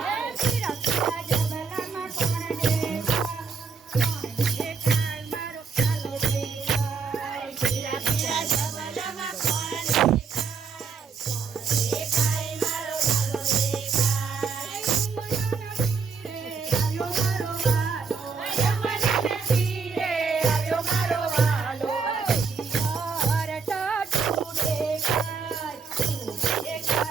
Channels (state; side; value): quieter; left; 5.2 dB